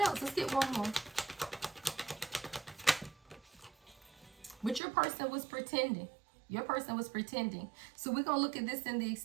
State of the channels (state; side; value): drops out; left; at 4.8 s